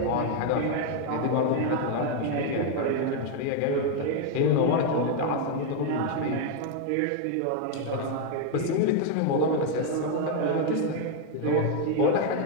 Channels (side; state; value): both; different; correlation 0.01